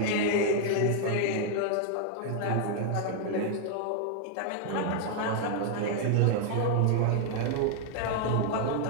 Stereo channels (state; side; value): different; both; correlation 0.00